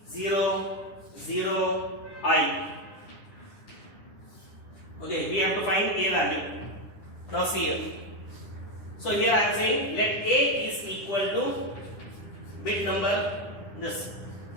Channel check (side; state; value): right; late; 10 ms